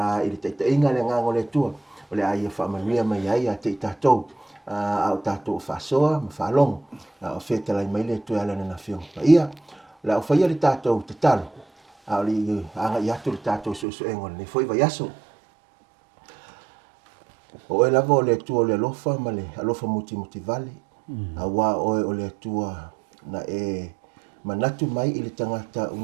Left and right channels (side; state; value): left; drops out; at 13.9 s